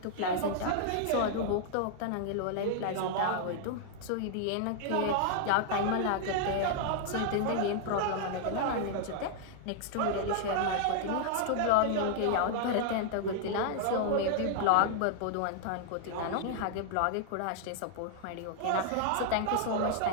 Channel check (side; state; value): both; different; correlation -0.01